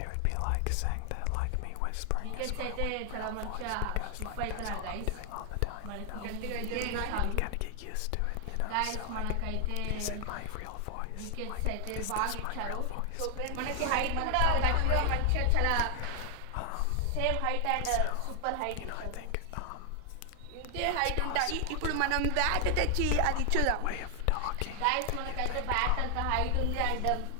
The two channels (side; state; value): both; different; correlation 0.00